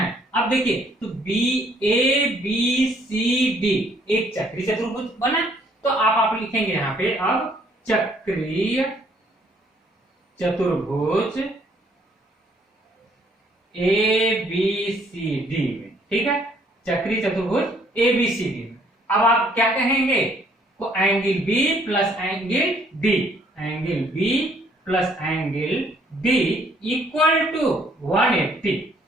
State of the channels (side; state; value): both; normal; correlation 0.64